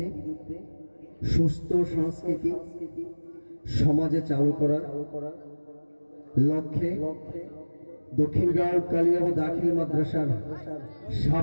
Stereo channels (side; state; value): both; inverted; correlation -1.00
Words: সুস্থ সংস্কৃতি সমাজে চালু করার লক্ষ্যে দক্ষিণগাঁও কালিয়াব দাখিল মাদ্রাসার